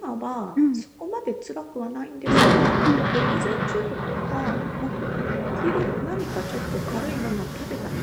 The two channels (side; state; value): both; identical; correlation 1.00